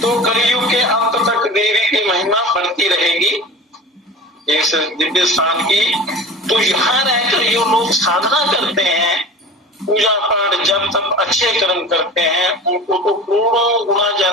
तो कलयुग के अंत तक देवी की महिमा बढ़ती रहेगी इस दिव्य स्थान की। तो यहाँ रहकर जो लोग साधना करते हैं, पूजा पाठ जब तक अच्छे कर्म करते हैं, उनको तो करोड़ों गुना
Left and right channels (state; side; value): normal; both; correlation 0.36